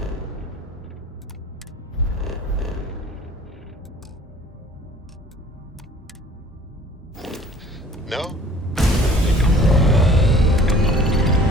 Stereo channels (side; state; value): both; normal; correlation 0.51